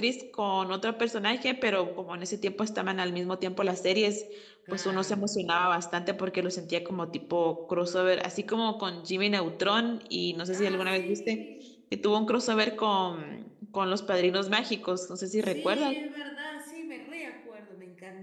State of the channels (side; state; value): both; identical; correlation 1.00